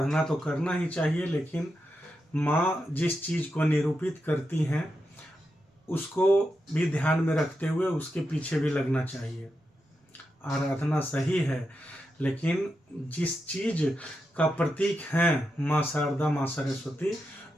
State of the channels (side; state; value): both; normal; correlation 0.87